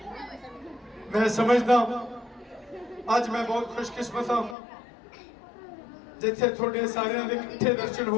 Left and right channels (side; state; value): right; drops out; at 4.5 s